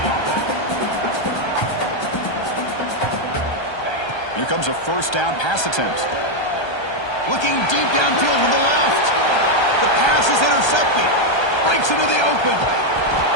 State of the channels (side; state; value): right; late; 1.3 ms